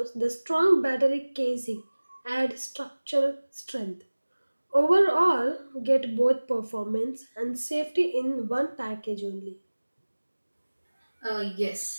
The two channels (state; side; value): inverted; both; correlation -1.00